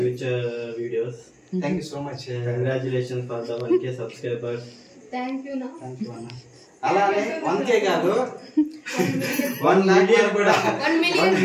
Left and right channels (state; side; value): identical; both; correlation 1.00